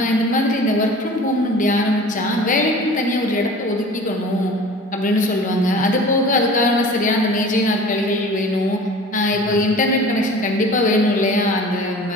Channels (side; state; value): both; normal; correlation 0.42